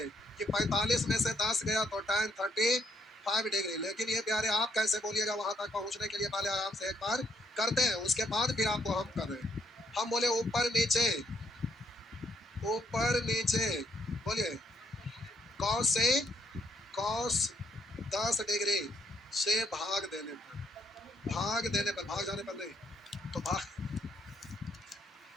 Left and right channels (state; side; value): normal; both; correlation 0.72